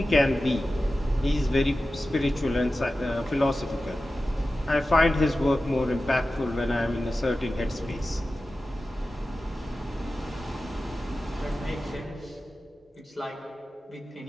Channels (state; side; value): normal; both; correlation 0.94